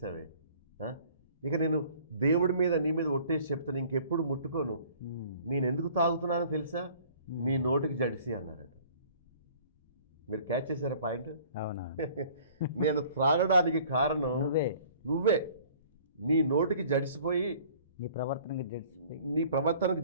ఇక నేను దేవుడి మీద నీ మీద ఒట్టేసి చెప్తాను, ఇంకెప్పుడు ముట్టుకోను, నేను ఎందుకు తాగుతున్నానో తెలుసా, నీ నోటికి జడిసి అన్నారట. మీరు క్యాచ్ చేశారా పాయింట్? అవునా? నేను త్రాగడానికి కారణం నువ్వే, నీ నోటికి జడిసిపోయి, నీ ప్రవర్తనకు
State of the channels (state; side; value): inverted; both; correlation -0.53